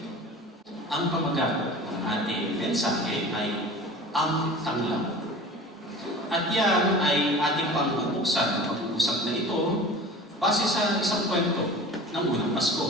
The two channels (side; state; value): both; normal; correlation 0.38